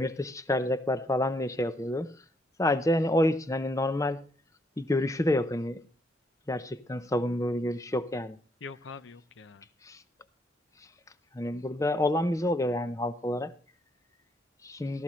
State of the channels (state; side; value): normal; both; correlation 0.73